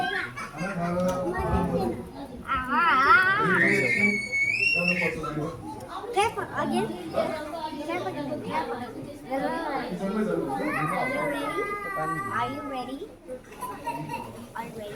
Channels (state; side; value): identical; both; correlation 1.00